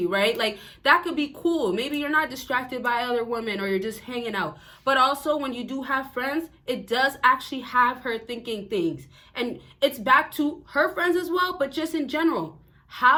right? Like, that could be cool. Maybe you're not distracted by other women or you're just hanging out. But also, when you do have friends, it does actually have her thinking things. And it's back to her friends as well, but just in general.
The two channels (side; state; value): both; identical; correlation 1.00